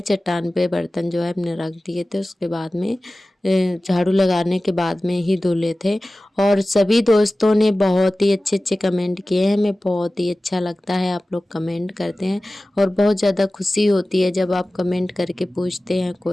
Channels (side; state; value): both; normal; correlation 0.97